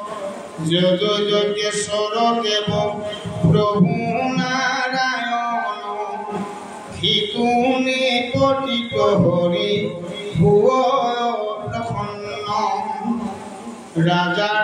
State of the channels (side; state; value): both; identical; correlation 1.00